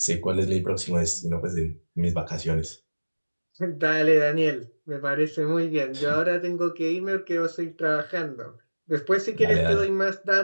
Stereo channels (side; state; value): both; inverted; correlation -1.00